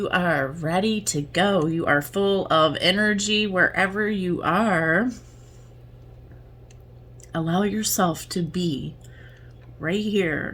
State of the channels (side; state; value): both; identical; correlation 1.00